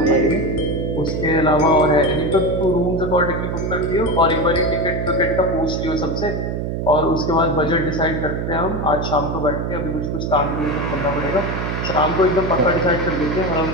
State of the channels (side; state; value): right; noise; hum, 3 dB below the sound